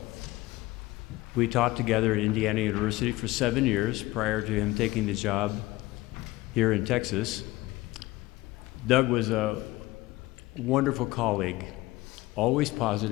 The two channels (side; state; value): right; quieter; 19.0 dB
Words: We taught together at Indiana University for 7 years prior to him taking the job here in Texas. Doug was a wonderful colleague, always